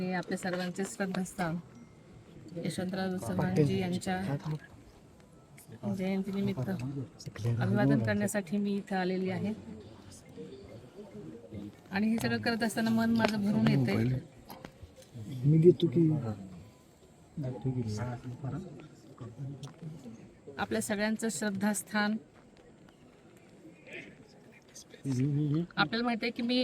आपल्या सर्वांचे श्रद्धास्थान यशवंतराव चव्हाणजी यांच्या जयंतीनिमित्त अभिवादन करण्यासाठी मी इथं आलेली आहे. आणि हे सगळं करत असताना मन माझं भरून येतंय. आपल्या सगळ्यांचं श्रद्धास्थान. आपल्याला माहिती आहे की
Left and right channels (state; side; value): identical; both; correlation 1.00